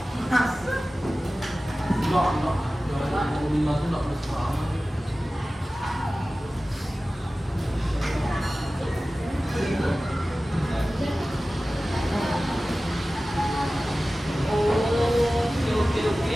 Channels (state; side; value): normal; both; correlation 0.96